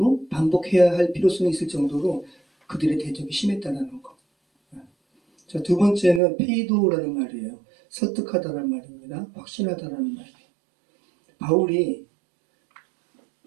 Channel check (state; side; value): drops out; left; at 6.2 s